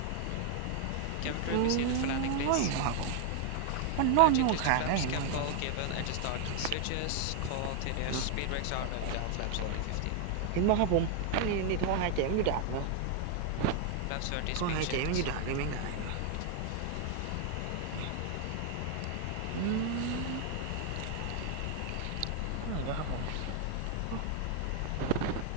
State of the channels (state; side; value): different; both; correlation 0.00